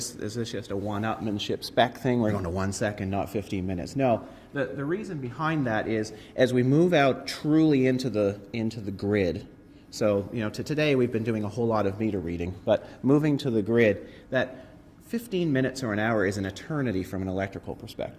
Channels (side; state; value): both; identical; correlation 1.00